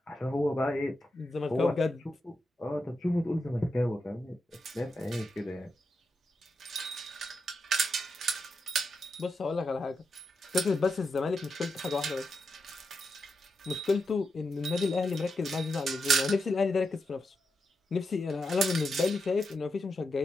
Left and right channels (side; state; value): both; normal; correlation 0.86